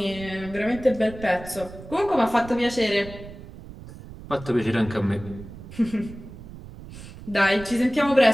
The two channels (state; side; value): noise; right; rumble, 15 dB below the sound